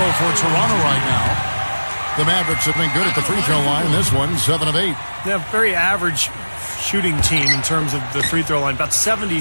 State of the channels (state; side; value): inverted; both; correlation -1.00